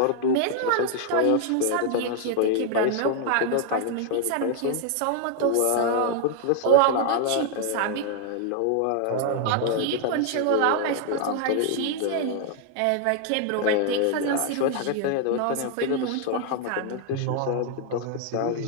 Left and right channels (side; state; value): both; different; correlation 0.00